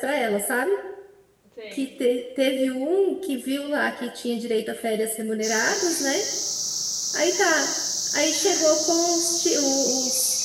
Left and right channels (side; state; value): both; identical; correlation 1.00